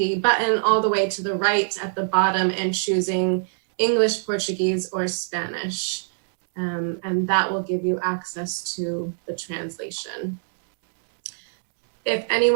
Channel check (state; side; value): silent; left; digital silence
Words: button all the way to the right at the bottom and choosing English, Portuguese, or Spanish. And that will give you access to the translation. If